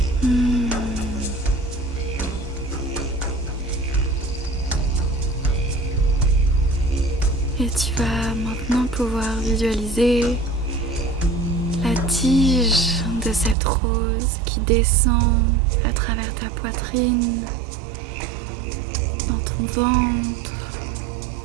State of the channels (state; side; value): drops out; left; at 13.6 s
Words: Et tu vas maintenant pouvoir visualiser la tige de cette rose qui descend à travers ta poitrine, dans ton ventre,